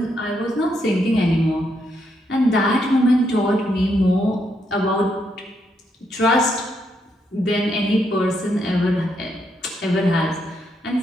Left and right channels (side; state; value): both; normal; correlation 0.78